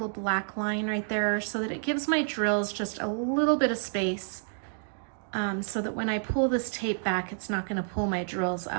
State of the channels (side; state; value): left; silent; digital silence